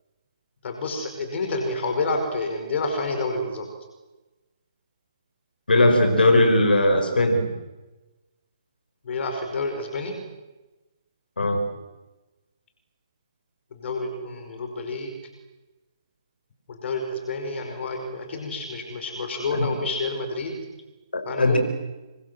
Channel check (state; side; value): inverted; both; correlation -0.75